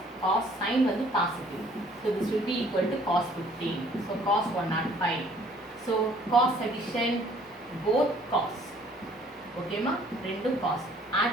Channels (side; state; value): both; normal; correlation 0.58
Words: cos sin வந்து positive. So this will be equal to cos 15. So cos 105. So cos addition both cos. ஓகேமா? ரெண்டும் cos.